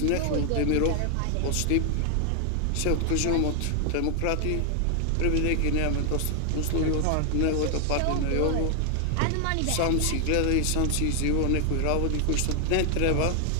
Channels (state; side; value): different; both; correlation 0.00